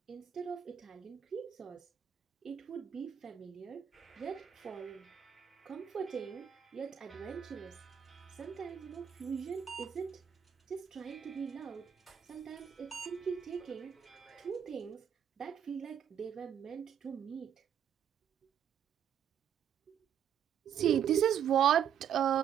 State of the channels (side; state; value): left; quieter; 8.8 dB